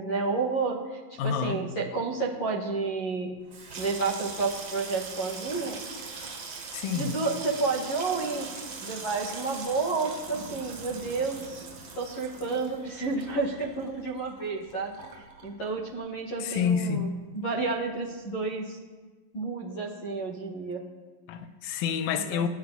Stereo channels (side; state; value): right; late; 11 ms